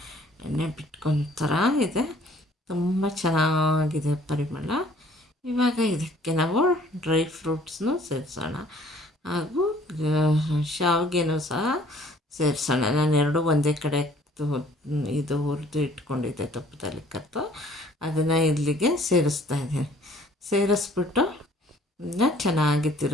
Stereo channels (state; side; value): normal; both; correlation 0.56